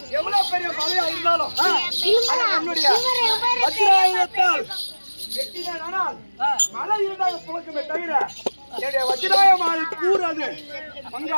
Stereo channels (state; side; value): inverted; both; correlation -1.00